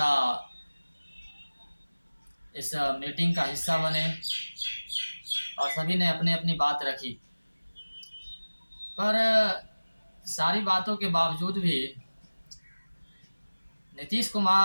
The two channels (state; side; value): inverted; both; correlation -1.00